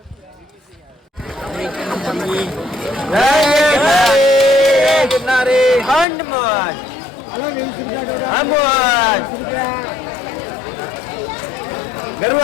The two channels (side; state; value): right; drops out; at 6.1 s